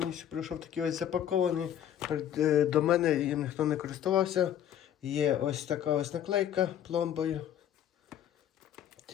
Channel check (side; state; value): right; quieter; 10.5 dB